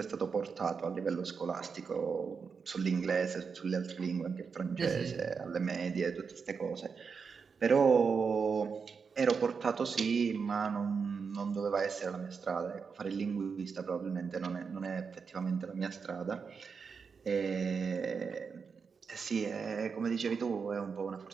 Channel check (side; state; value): left; quieter; 5.6 dB